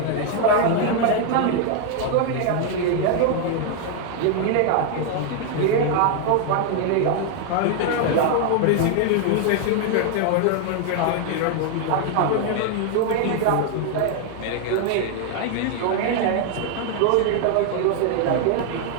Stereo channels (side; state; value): both; different; correlation 0.00